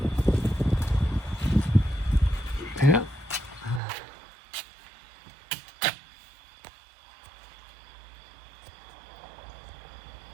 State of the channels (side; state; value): left; drops out; at 3.8 s